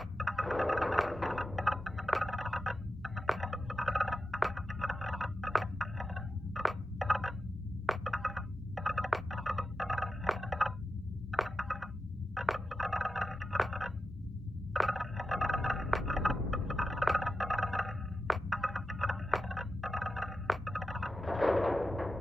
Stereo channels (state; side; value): normal; both; correlation 0.91